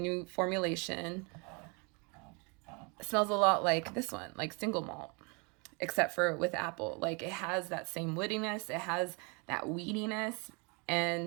formulation, smells a lot like this one, like single malt, except for with apple. Like, it has that same woodiness, it has that weediness,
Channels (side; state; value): left; quieter; 31.8 dB